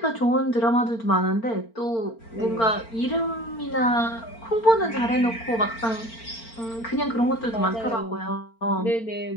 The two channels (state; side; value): late; right; 4.4 ms